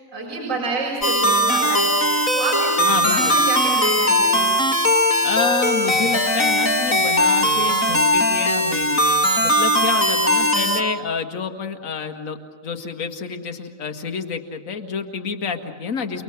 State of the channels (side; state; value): right; late; 3.9 ms